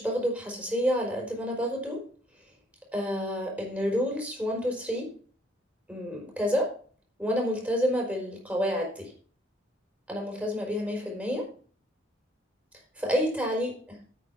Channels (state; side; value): normal; both; correlation 0.64